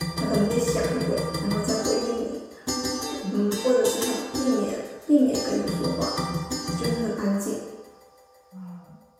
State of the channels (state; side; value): identical; both; correlation 1.00